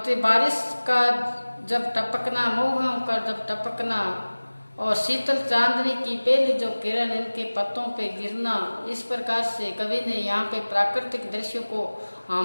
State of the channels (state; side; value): inverted; both; correlation -1.00